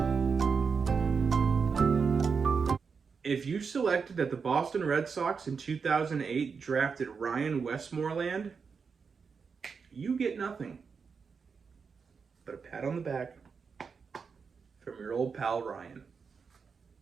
If you selected that the Boston Red Sox in 2008 drafted Ryan Westmoreland, you get nothing but a pat on the back from your old pal Ryan.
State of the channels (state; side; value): quieter; left; 5.6 dB